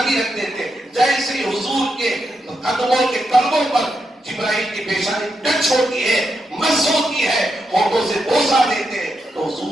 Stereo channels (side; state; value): both; normal; correlation 0.84